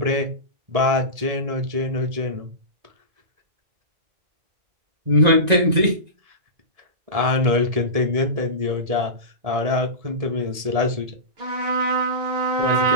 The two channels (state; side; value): late; left; 1.7 ms